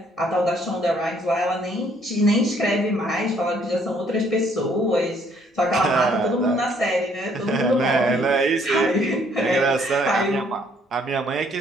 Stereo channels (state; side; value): normal; both; correlation 0.65